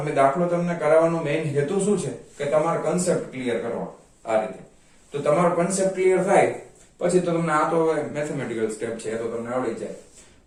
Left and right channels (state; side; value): identical; both; correlation 1.00